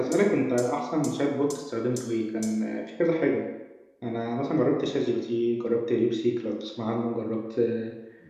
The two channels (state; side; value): identical; both; correlation 1.00